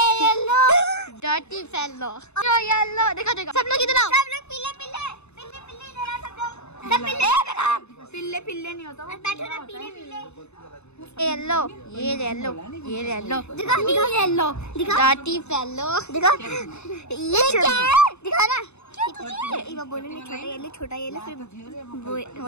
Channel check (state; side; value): late; right; 0.81 ms